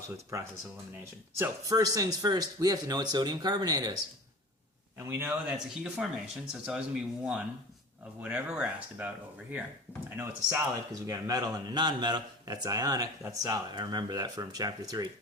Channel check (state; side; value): normal; both; correlation 0.37